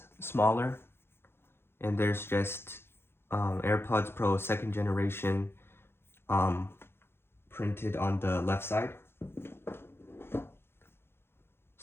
smaller, and there's just AirPods Pro 2nd generation printed on the left side.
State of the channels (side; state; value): right; late; 0.11 ms